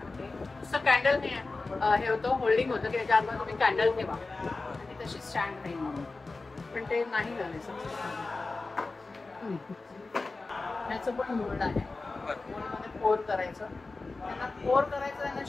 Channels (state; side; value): quieter; right; 3.6 dB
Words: नुसतं कॅन्डल नाही हे होतं होल्डिंग होतं की त्याच्या आतमध्ये तुम्ही कॅन्डल ठेवा आणि तशी स्टँड नाही म्हणून पण ते नाही झाले सक्सेस. ह्याचं पण मोल्ड आहे. मोल्डमध्ये पोर करायचं. त्यांना पोर करायचं त्यांना